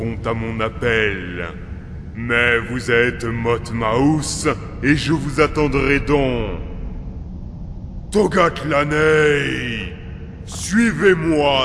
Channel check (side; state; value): both; identical; correlation 1.00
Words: à mon appel. Mais vous êtes Motmaus et je vous attendrai donc. Togatlanei,